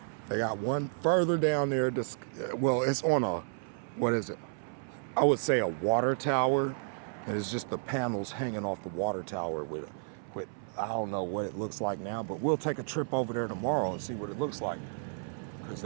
They got one further down there. Well, it's on a, what is it? I would say a water tower. And it's just the panels hanging off the water tower with I don't know what it looks like now, but we'll take a trip over there tomorrow and see what it looks like. Because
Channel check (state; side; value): silent; left; 56 dB below the other